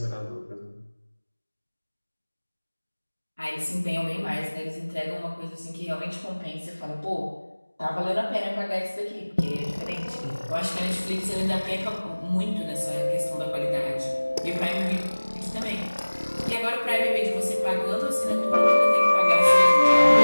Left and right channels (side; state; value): both; inverted; correlation -1.00